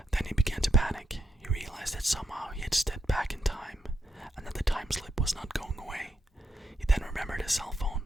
Then he began to panic. He realized that somehow he had stepped back in time, and that the time slip was not going away. He then remembered his cell phone.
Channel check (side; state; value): both; normal; correlation 0.81